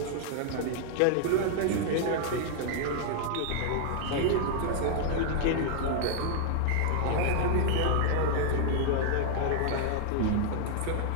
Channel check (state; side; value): different; both; correlation 0.00